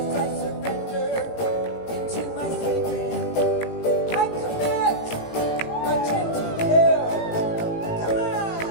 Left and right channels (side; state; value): right; late; 18 ms